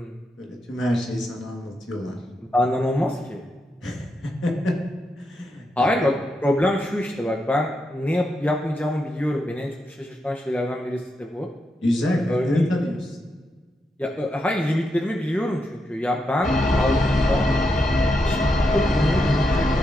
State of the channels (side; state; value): both; normal; correlation 0.84